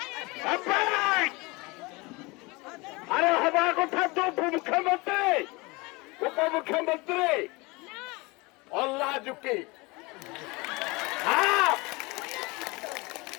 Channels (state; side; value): quieter; right; 25.1 dB